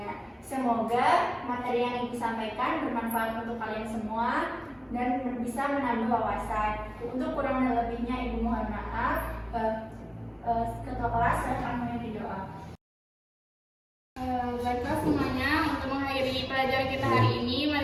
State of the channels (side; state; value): both; identical; correlation 1.00